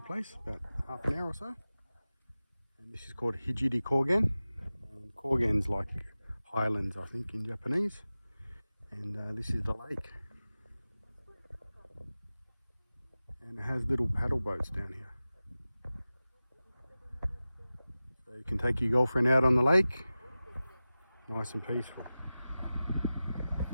about half an hour or so. And this is called Hijiri Kogen. And Kogen's like highlands, I think, in Japanese. And this is the lake. And it has little paddle boats down here. So you can take your girlfriend out on the lake, nice and peaceful.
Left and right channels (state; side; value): inverted; both; correlation -0.96